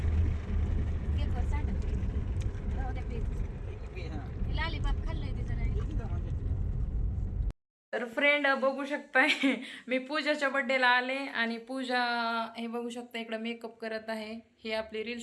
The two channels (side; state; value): both; identical; correlation 1.00